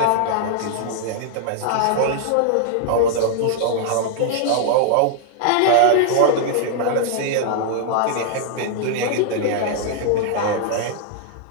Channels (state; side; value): different; both; correlation -0.01